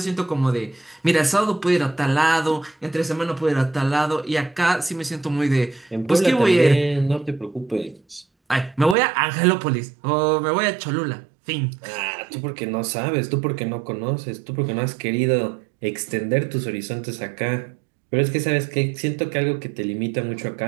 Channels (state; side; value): drops out; left; at 9.0 s